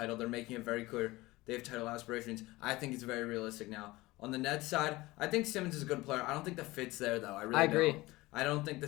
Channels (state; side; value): quieter; right; 20.0 dB